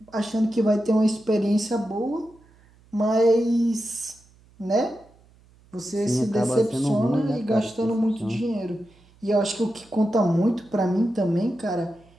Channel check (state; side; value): noise; right; hum, 29 dB below the sound